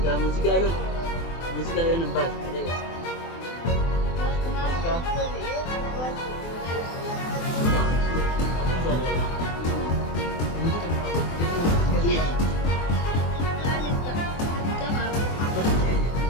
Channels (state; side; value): late; right; 24 ms